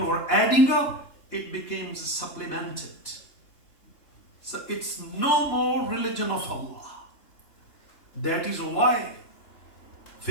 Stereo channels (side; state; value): right; late; 2.9 ms